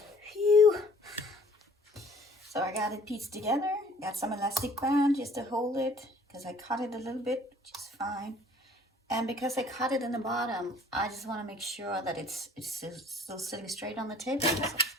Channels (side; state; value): both; normal; correlation 0.55